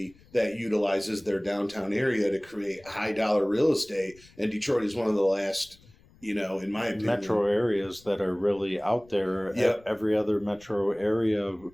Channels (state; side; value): noise; left; rumble, 27 dB below the sound